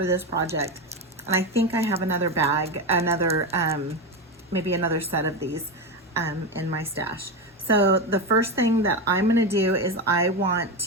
this project. And I think I have another bag, maybe another set of these in my stash. So the first thing that I'm going to do is I want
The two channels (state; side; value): normal; both; correlation 0.15